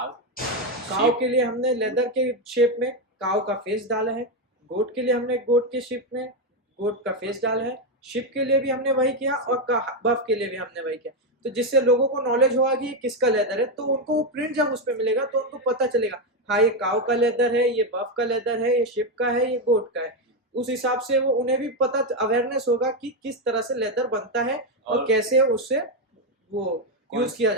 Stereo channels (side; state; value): both; normal; correlation 0.07